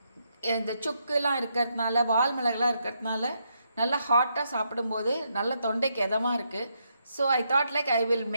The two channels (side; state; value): both; inverted; correlation -0.79